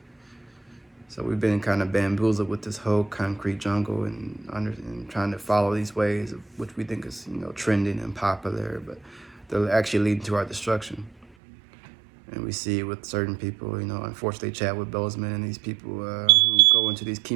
So we've been kind of bamboozled with this whole concrete jungle and trying to follow these ways, which we think is trending and popular, but they're actually leading to our destruction. And we see it with certain people, unfortunately, Chadwick Boseman and these people who go into these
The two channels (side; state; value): left; drops out; at 11.2 s